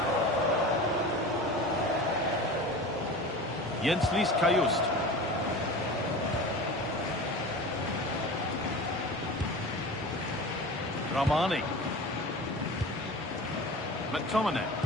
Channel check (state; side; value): normal; both; correlation 0.34